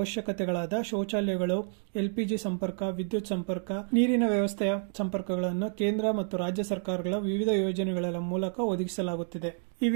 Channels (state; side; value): silent; left; 58 dB below the other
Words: ಶೌಚಾಲಯಗಳು, ಎಲ್ಪಿಜಿ ಸಂಪರ್ಕ, ವಿದ್ಯುತ್ ಸಂಪರ್ಕ, ನೀರಿನ ವ್ಯವಸ್ಥೆಯ ಸಂಪರ್ಕಗಳನ್ನು ಕೇಂದ್ರ ಮತ್ತು ರಾಜ್ಯ ಸರ್ಕಾರಗಳ ವಿವಿಧ ಯೋಜನೆಗಳ ಮೂಲಕ ಒದಗಿಸಲಾಗುತ್ತಿದೆ. ಈ